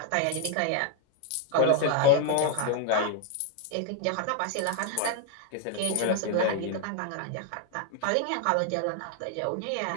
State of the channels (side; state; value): both; different; correlation 0.00